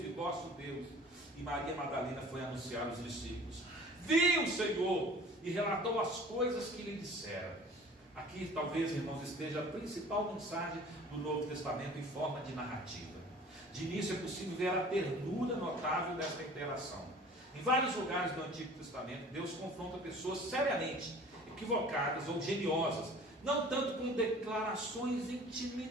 e vosso Deus. E Maria Madalena foi anunciar aos discípulos: viu o Senhor, e relatou as coisas que lhe disseram. Aqui talvez, irmãos, esteja a principal mensagem do Novo Testamento em forma de narrativa. De início é possível ver a ternura notável desta interação. Em vários lugares do Antigo Testamento, Deus confronta pessoas seriamente equivocadas ou geniosas, não tanto com declarações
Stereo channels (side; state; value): both; normal; correlation 0.47